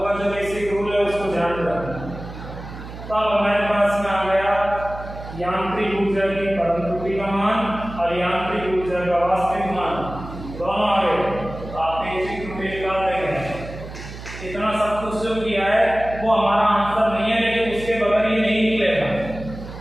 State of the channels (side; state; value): right; noise; hum, 12 dB below the sound